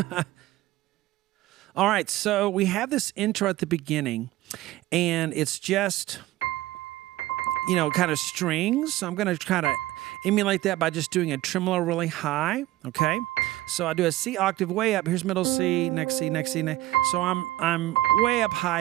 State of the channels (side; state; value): left; quieter; 16.4 dB